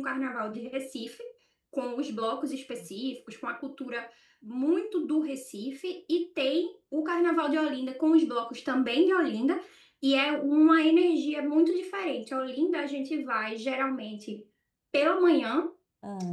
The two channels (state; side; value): identical; both; correlation 1.00